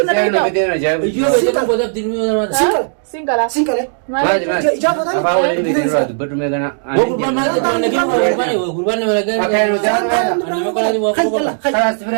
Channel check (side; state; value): left; silent; digital silence